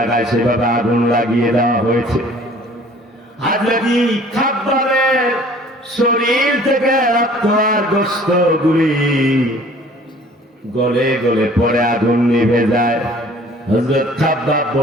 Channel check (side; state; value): both; normal; correlation 0.52